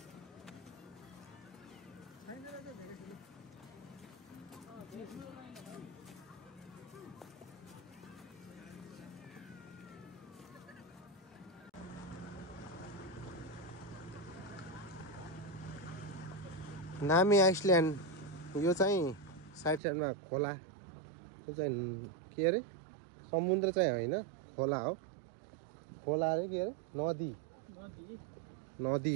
नामी आइसल्यान्ड यो चाहिँ साइडमा खोला यो चाहिँ के अरे समुद्र चाहिँ होइन खोला हो खोला अरे के अरे नदी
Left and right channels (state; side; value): drops out; left; at 19.8 s